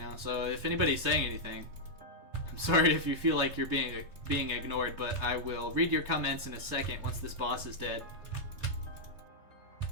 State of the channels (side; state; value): left; late; 3.3 ms